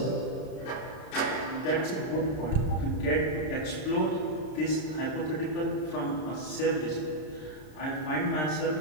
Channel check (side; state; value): right; late; 33 ms